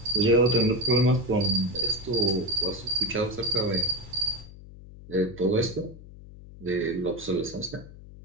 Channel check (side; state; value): left; noise; hum, 17 dB below the sound